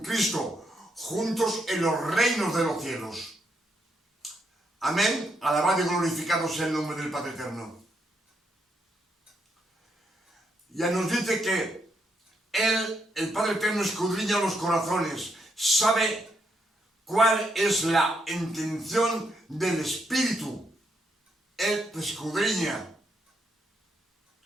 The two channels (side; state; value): both; normal; correlation 0.78